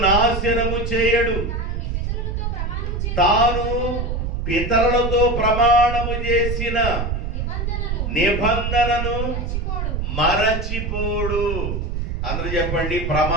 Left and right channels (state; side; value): noise; right; rumble, 2 dB below the sound